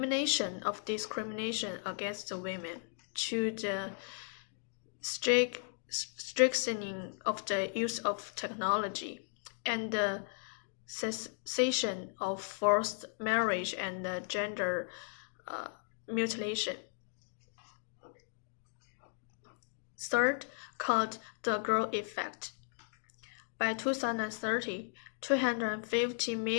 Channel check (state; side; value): silent; right; 54 dB below the other